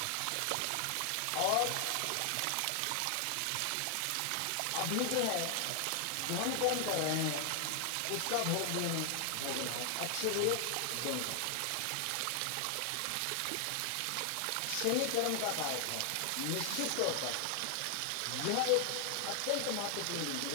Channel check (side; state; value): both; different; correlation 0.00